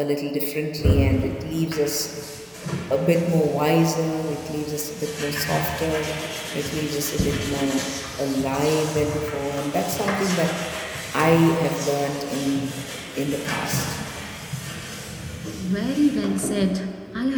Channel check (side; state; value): both; identical; correlation 1.00